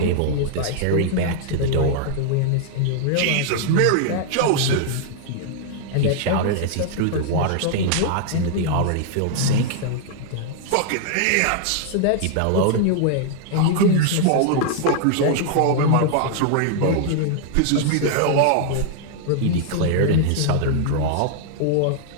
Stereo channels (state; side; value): different; both; correlation 0.00